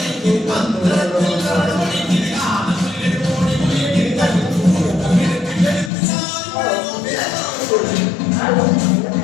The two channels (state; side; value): drops out; right; at 5.9 s